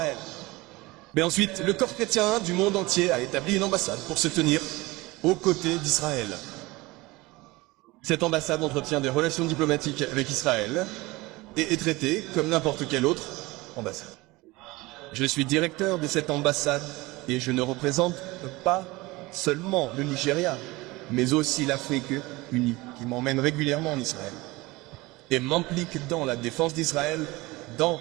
Mais ensuite, le corps chrétien du monde entier a établi une ambassade pour se tenir aux côtés d'Israël. Cette ambassade entretient des relations diplomatiques avec Israël et est traitée comme n'importe quelle autre ambassade. Je suis directeur de cette ambassade et je ne représente pas seulement le Nigeria, mais aussi l'Afrique unie, qui m'emmène régulièrement en Israël et m'implique dans la défense d'Israël dans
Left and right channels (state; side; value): quieter; left; 21.5 dB